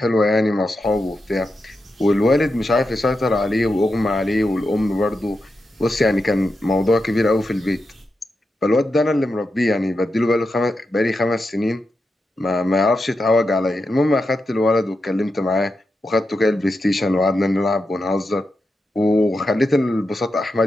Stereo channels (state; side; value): normal; both; correlation 0.88